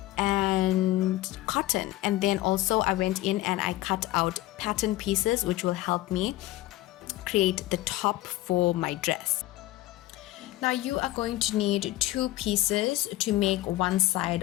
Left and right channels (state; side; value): quieter; right; 16.7 dB